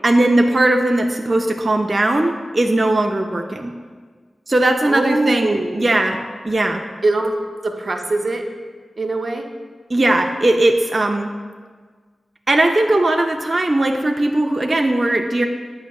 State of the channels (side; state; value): both; normal; correlation 0.96